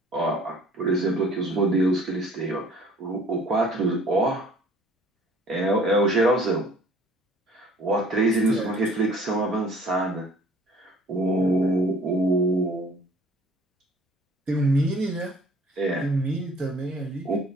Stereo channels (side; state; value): both; normal; correlation 0.53